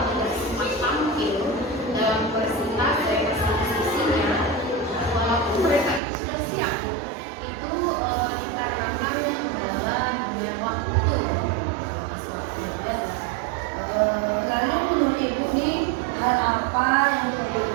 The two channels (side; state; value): left; drops out; at 6.0 s